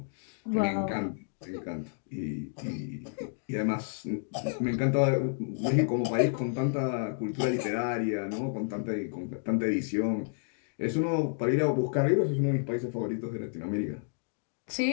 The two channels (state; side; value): silent; right; digital silence